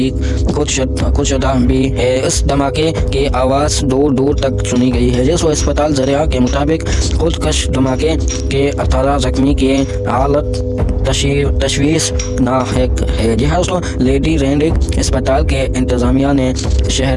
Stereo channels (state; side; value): identical; both; correlation 1.00